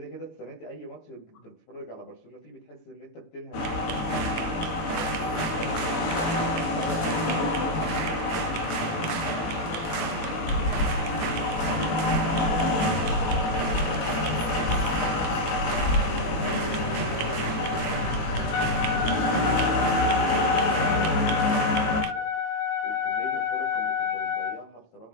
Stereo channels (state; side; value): late; right; 18 ms